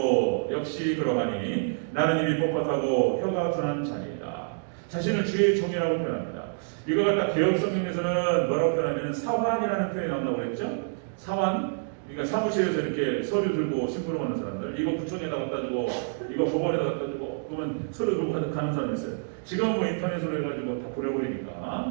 역시 그러하니 나는 입이 뻣뻣하고 혀가 둔한 자니이다. 자신을 주의 종이라고 표현합니다. 이거 갖다 개혁 성경에서는 뭐라고 표현하면 사환이라는 표현이 나온다고 그랬죠. 사환. 그러니까 사무실에서 이렇게 서류 들고 심부름하는 사람들, 이거 구청에다 갖다 주고, 이거 법원에다 갖다 주고, 그러면 서류 들고 가는 사람이 있어요. 지금은 뭐 인터넷으로 해가지고 다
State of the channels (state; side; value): silent; left; digital silence